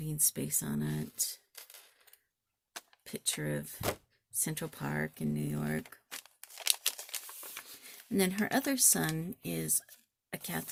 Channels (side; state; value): both; identical; correlation 1.00